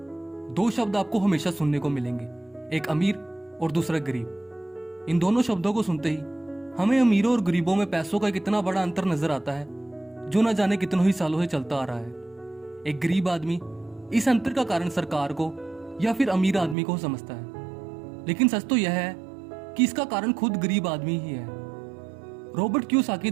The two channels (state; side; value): drops out; left; at 16.8 s